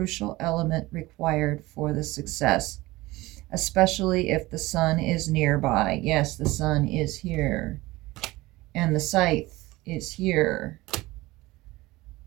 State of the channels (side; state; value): left; quieter; 19.8 dB